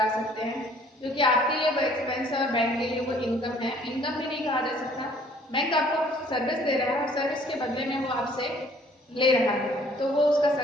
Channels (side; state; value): both; normal; correlation 0.58